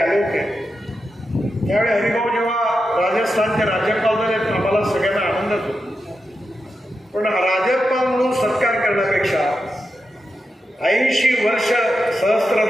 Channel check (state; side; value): normal; both; correlation 0.88